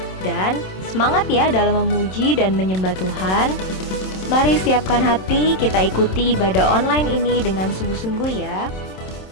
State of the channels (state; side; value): late; right; 27 ms